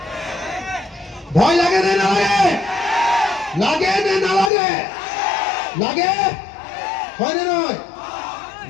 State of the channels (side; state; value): right; drops out; at 4.5 s